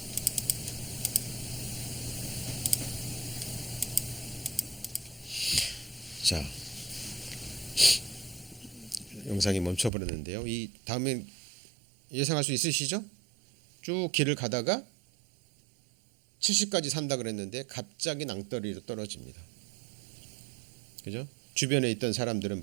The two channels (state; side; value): drops out; left; at 9.9 s